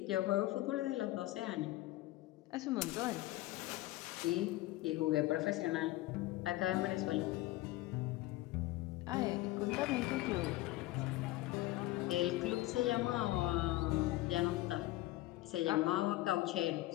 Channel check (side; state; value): right; quieter; 17.5 dB